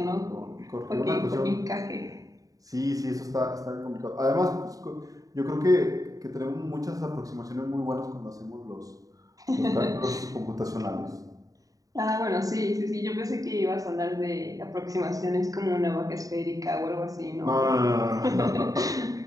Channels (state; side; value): late; left; 0.17 ms